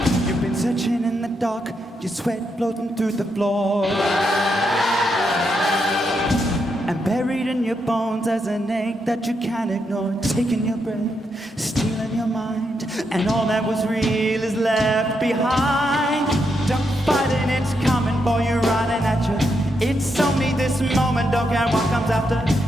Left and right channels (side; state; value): both; normal; correlation 0.81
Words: You've been searching in the dark, your sweat floating through the floor. And buried in your bones as an ache that you can't ignore. Taking your breath, stealing your mind, and all that was real is left behind. Don't fight it, it's coming for you, running at you. It's only this moment, don't care what comes after.